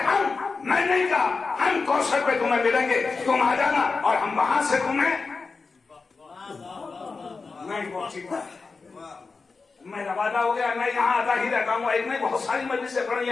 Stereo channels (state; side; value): quieter; right; 4.4 dB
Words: मैं नहीं कहा हम कौसर पे तुम्हें मिलेंगे, तुम आ जाना और हम वहां से तुम्हें नहीं पहुंचेगा। मेरा वादा हो गया, मैं यहाँ आता ही रहता हूँ, एक नहीं बहुत सारी मजलिसें पढ़ी